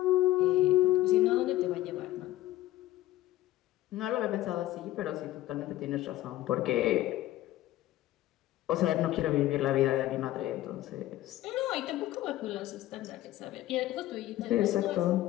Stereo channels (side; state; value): right; quieter; 15.2 dB